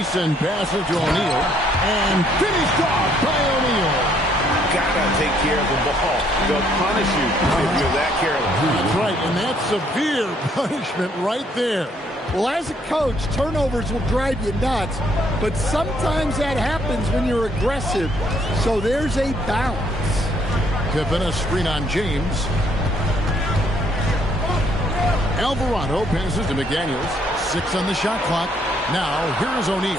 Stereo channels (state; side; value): normal; both; correlation 0.68